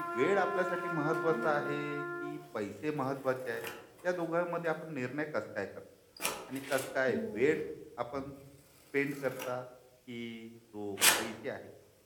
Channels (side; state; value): both; identical; correlation 1.00